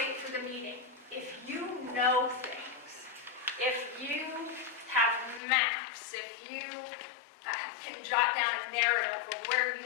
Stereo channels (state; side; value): drops out; right; at 5.4 s